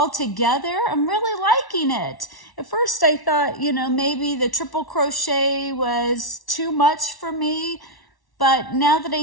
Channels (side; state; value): right; late; 1.1 ms